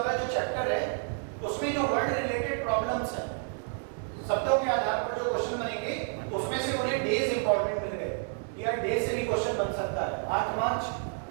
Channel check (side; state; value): left; silent; 55 dB below the other